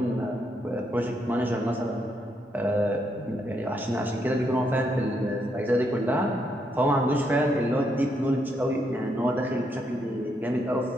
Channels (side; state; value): both; normal; correlation 0.77